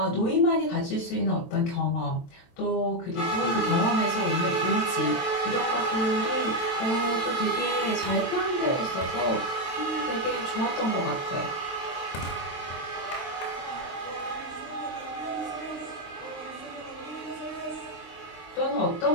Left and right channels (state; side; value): late; right; 23 ms